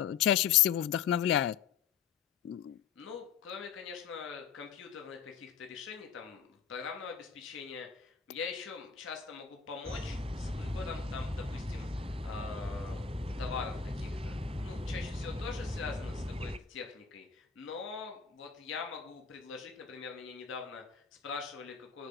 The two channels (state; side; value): quieter; right; 7.0 dB